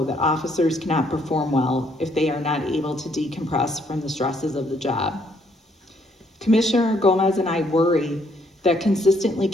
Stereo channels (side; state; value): both; normal; correlation 0.69